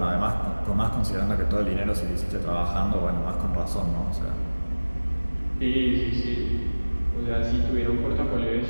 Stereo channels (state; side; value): inverted; both; correlation -1.00